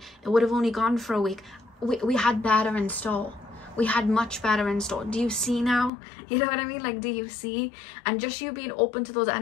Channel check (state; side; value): drops out; right; at 5.9 s